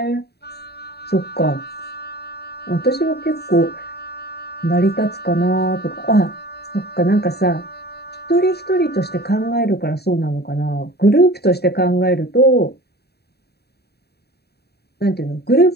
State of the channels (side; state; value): right; late; 0.47 ms